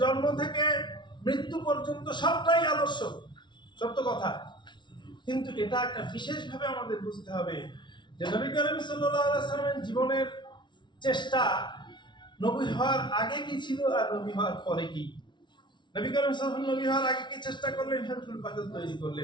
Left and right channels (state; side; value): late; right; 0.23 ms